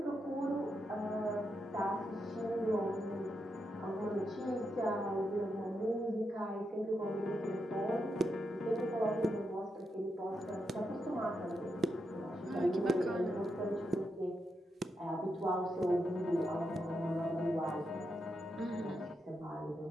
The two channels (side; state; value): both; normal; correlation 0.84